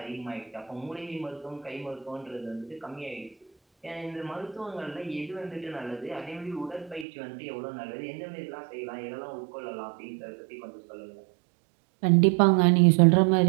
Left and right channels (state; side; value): drops out; left; at 7.1 s